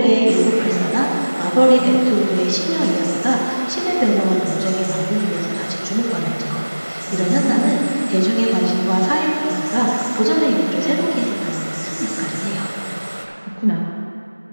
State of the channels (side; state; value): both; inverted; correlation -1.00